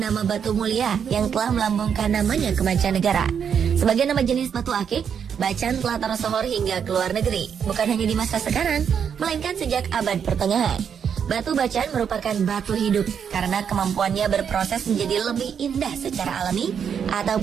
batu mulia yang telah melambungkan namanya ke mancanegara. Sebagai nama jenis batu akik, Bacan telah tersohor hingga ke luar negeri, bukan hanya di masa sekarang, melainkan sejak abad pertengahan. Batu bacan merupakan batu hidup karena kemampuannya berproses menjadi lebih indah secara alami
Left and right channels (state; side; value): quieter; left; 7.5 dB